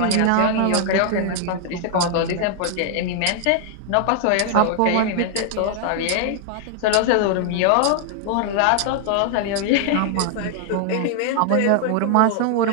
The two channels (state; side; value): different; both; correlation 0.00